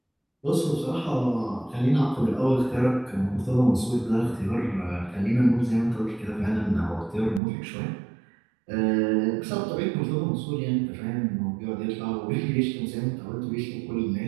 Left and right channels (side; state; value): left; drops out; at 7.4 s